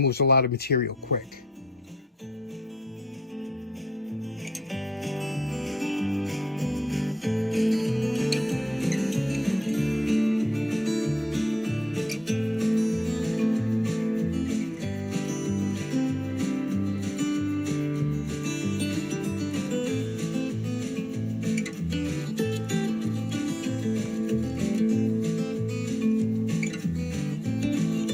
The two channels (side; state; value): both; normal; correlation 0.82